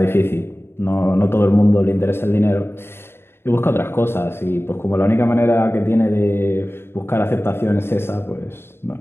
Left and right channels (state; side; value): late; right; 0.11 ms